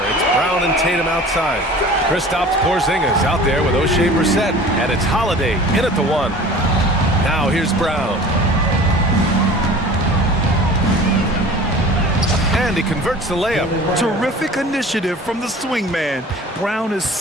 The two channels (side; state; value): both; normal; correlation 0.42